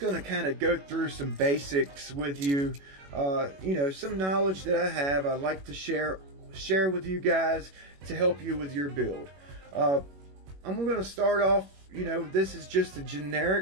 to kind of go through some basics with you. You know, some knowledge that I have, I'd like to share with you guys to help you with your build. I'm going to start off, you know, this is just a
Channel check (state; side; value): late; left; 21 ms